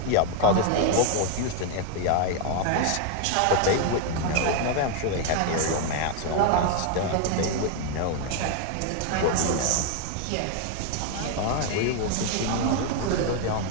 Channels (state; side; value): different; both; correlation 0.01